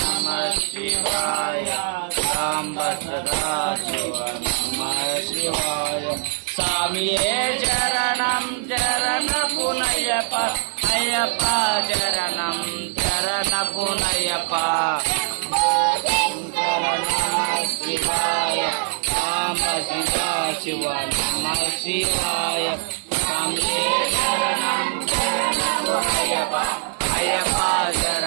శివాయ సాంబ సదా శివ నమ శివాయ స్వామియే చరణం చరణ పునయప అయ్యప్ప చరణం చరణ పునయప శంకర నమ శివాయ సాంబ సదా శివ నమ శివాయ స్వామియే చరణం చరణ పునయప అయ్యప్ప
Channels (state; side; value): silent; left; digital silence